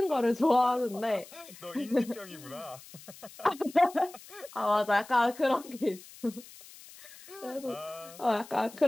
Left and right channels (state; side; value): noise; left; hiss, 19 dB below the sound